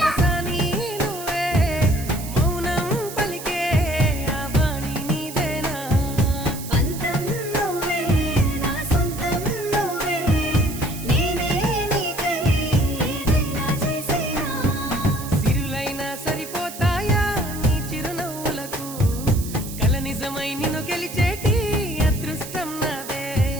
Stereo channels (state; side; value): noise; right; hiss, 12 dB below the sound